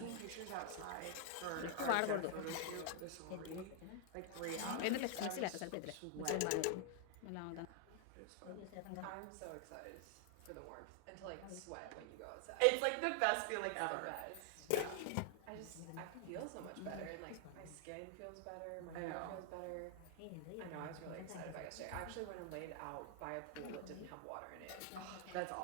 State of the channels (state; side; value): different; both; correlation 0.00